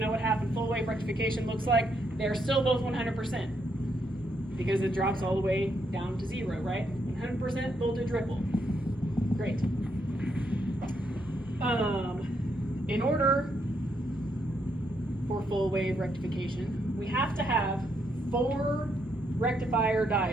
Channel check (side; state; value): both; normal; correlation 0.77